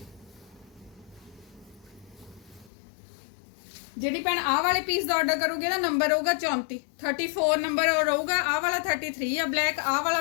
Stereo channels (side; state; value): right; drops out; at 2.7 s